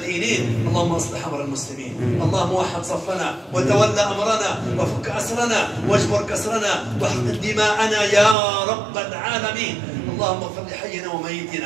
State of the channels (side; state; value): left; drops out; at 8.3 s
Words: اللهم اصلح أمر المسلمين اللهم وحد صفنا وتولى أمرنا وفك أسرنا واجبر كسرنا واحقن دماءنا يا رب العالمين اللهم اغفر لحينا